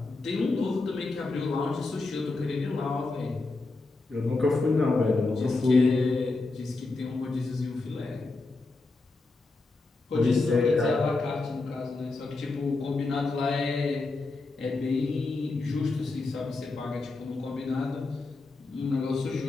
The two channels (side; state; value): right; quieter; 3.5 dB